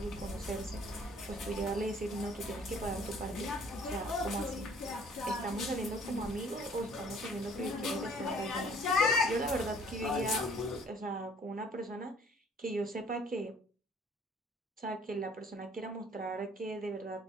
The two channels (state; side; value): normal; both; correlation 0.56